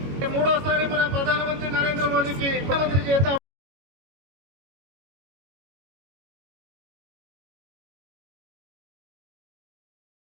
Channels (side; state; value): left; late; 22 ms